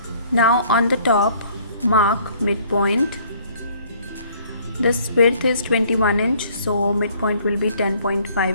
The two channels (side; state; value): both; inverted; correlation -0.59